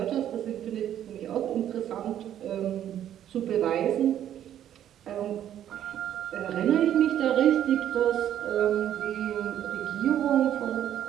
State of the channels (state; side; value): quieter; left; 10.9 dB